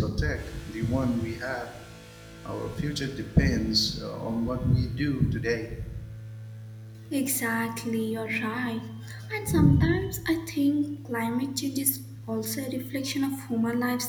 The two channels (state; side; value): identical; both; correlation 1.00